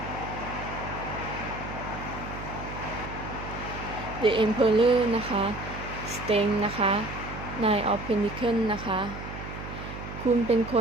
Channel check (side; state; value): right; noise; hum, 9 dB below the sound